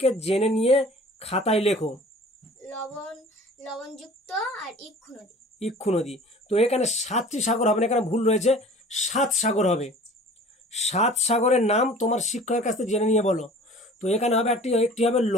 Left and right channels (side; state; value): both; normal; correlation 0.46